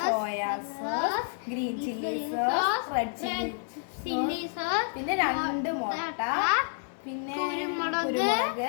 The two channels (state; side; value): silent; right; digital silence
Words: soya sauce, green chilli sauce, red chilli sauce, പിന്നെ 2 മുട്ട, പിന്നെ